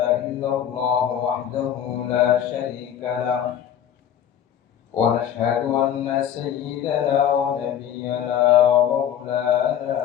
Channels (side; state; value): right; quieter; 9.9 dB